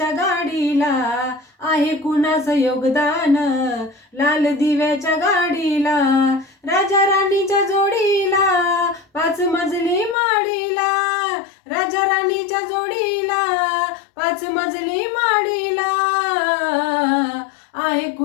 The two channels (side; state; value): right; drops out; at 10.2 s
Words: गाडीला, आहे कुणाचं योगदान लाल दिव्याच्या गाडीला. राजा राणीच्या जोडीला 5 मजली माडीला, राजा राणीच्या जोडीला 5 मजली माडीला. आहे